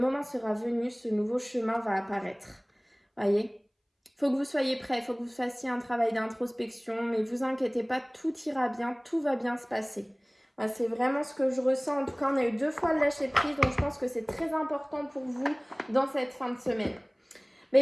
sera venu, ce nouveau chemin va apparaître. Voyez ? Faut que vous soyez prêts, faut que vous fassiez un travail d'introspection, mais vous inquiétez pas, tout ira bien, tout va bien se passer. Voilà, c'est vraiment ce que je ressens. En tout cas, on a eu 2 fois le lâcher prise, donc je pense que c'est très important pour vous dans cette fin de semaine.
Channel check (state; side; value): identical; both; correlation 1.00